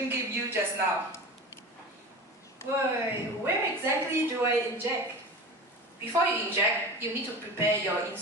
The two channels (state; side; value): normal; both; correlation 0.32